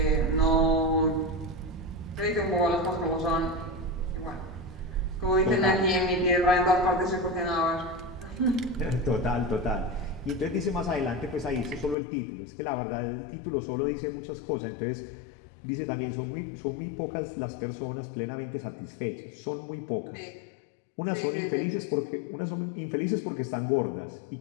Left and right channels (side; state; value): right; drops out; at 12.0 s